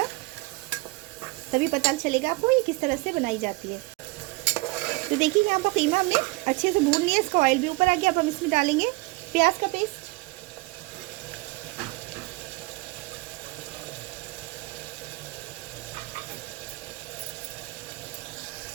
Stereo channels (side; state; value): left; quieter; 23.5 dB